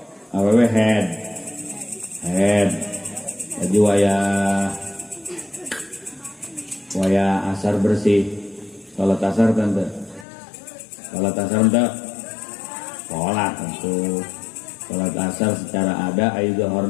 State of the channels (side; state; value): right; drops out; at 10.2 s